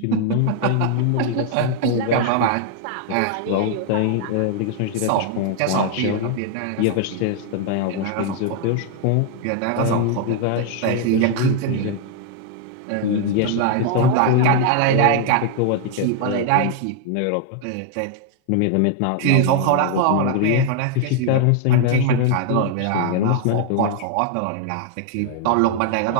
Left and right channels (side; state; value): both; different; correlation 0.00